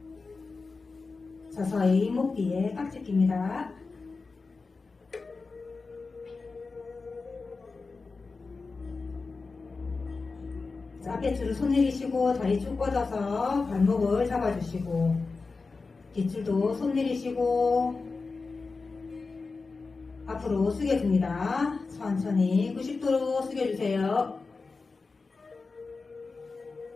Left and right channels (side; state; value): right; quieter; 4.1 dB